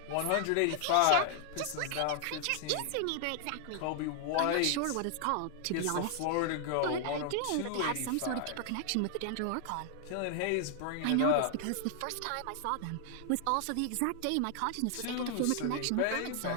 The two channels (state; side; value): different; both; correlation 0.00